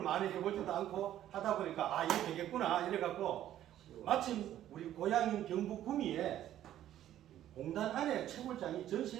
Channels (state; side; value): quieter; left; 12.1 dB